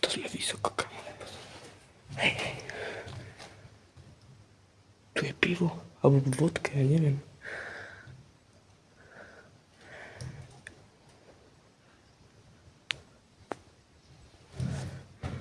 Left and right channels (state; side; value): identical; both; correlation 1.00